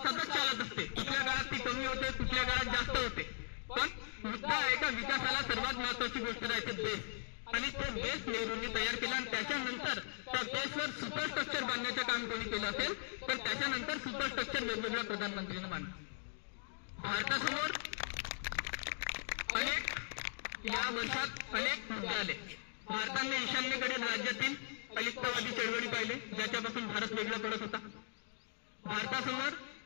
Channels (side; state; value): right; silent; digital silence